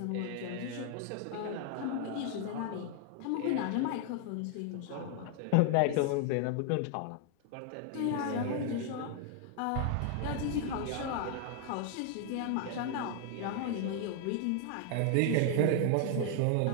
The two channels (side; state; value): both; different; correlation 0.00